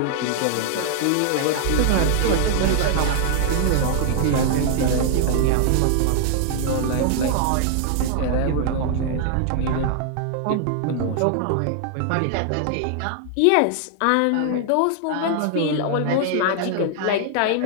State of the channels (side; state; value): both; different; correlation 0.00